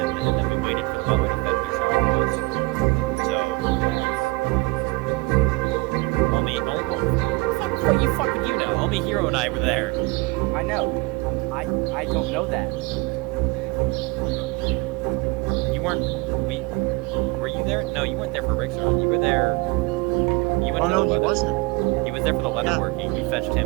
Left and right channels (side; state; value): left; quieter; 24.5 dB